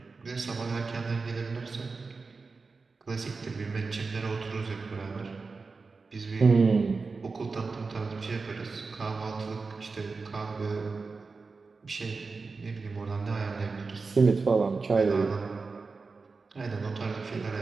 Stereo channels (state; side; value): quieter; left; 4.3 dB